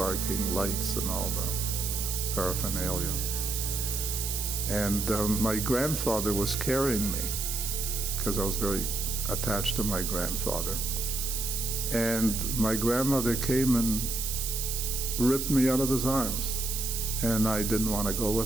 lights, and all the paraphernalia. And my grandfather was carrying me because I was very attached to my grandfather. And my grandmother came and ripped me out of his arms, and I didn't want to go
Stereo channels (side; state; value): right; noise; hiss, 2 dB below the sound